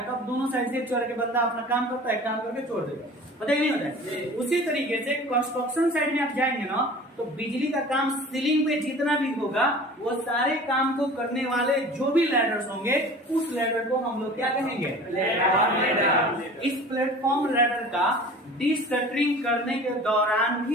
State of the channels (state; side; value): normal; both; correlation 0.42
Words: तब दोनों साइड से चढ़ के बंदा अपना काम करता है, काम करके छोड़ देता है, पता ही नहीं होता है। उसी तरीके से कंस्ट्रक्शन साइड में आप जाएंगे ना तो बिजली का काम सीलिंग पे जितना भी होगा वो सारे काम को करने वाले जो भी लैडर्स होंगे उस लैडर को हम लोग क्या कहेंगे? लैडर। इस प्लेटफॉर्म लैडर का डिस्कटरिंग करने के दौरान